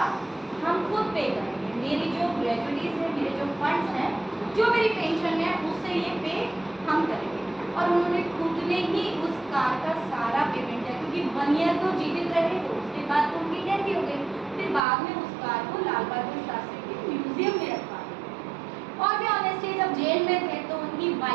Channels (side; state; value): left; drops out; at 14.8 s